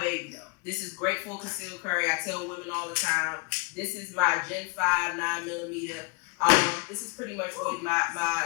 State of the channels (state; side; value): quieter; right; 31.1 dB